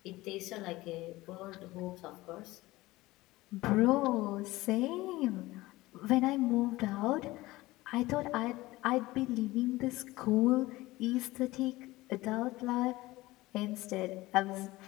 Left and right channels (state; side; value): quieter; right; 19.0 dB